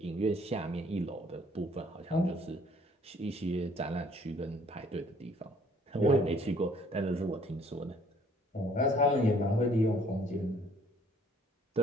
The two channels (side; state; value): both; normal; correlation 0.59